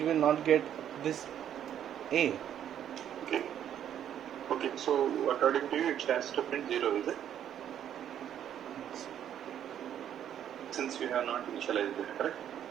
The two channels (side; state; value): left; quieter; 10.0 dB